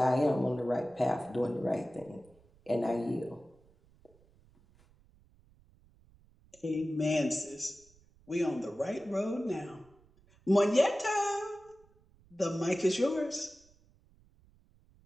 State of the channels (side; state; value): right; noise; rumble, 30 dB below the sound